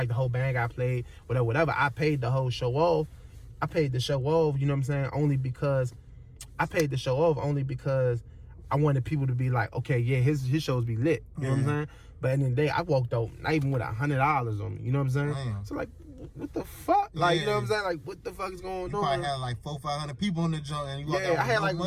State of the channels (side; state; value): both; identical; correlation 1.00